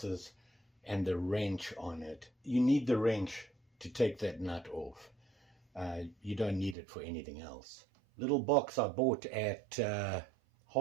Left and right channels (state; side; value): drops out; left; at 6.8 s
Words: and the wrench on it. You need the wrench to take that nut off. You don't need it for anything else. Little box I bought at